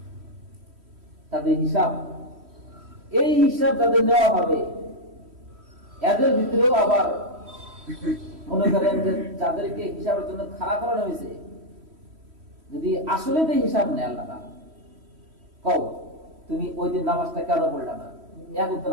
তাদের হিসাব, এই হিসাব যাদের নেওয়া হবে, এদের ভিতরেও আবার মনে করেন যে যাদেরকে হিসাবের জন্য খাড়া করানো হয়েছে, যদি আসলে তো হিসাব নেয় আল্লাহ তাআলা, কও তুমি ওই দিন নামাজটা কেন পড়লা না, এক ওয়াক্ত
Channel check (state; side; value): late; left; 3.1 ms